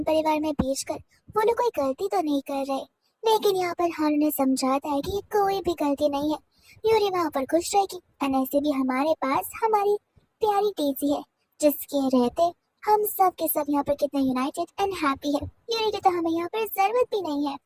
परिवार में भेजकर वो लोग कोई गलती तो नहीं कर रहे, लेकिन यहाँ पर हान ने समझाता है कि कोई भी गलती नहीं है, यूरी वहाँ पर खुश रहेगी। एंड ऐसे भी हमारे पास हमारी प्यारी डेजी है, जिसके रहते हम सब के सब यहाँ पर कितने यूनाइटेड एंड हैप्पी है। यूरी की तो हमें यहाँ पर जरूरत भी नहीं है।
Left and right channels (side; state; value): both; identical; correlation 1.00